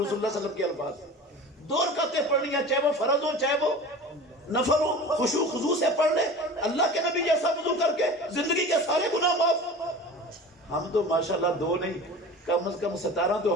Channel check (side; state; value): both; normal; correlation 0.37